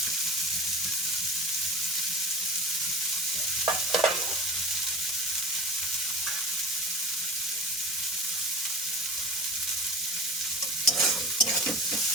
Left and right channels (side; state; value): both; normal; correlation 0.34